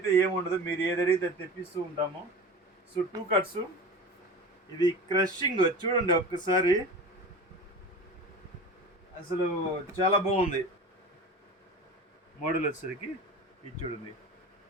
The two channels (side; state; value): both; normal; correlation 0.33